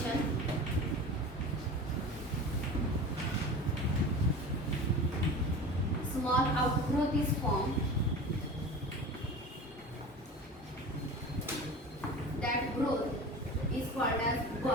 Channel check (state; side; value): normal; both; correlation 0.34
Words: Small outgrowth is formed. That growth is called as